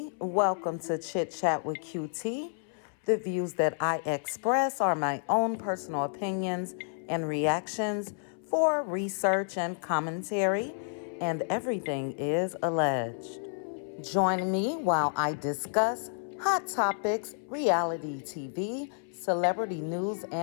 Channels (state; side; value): silent; right; 58 dB below the other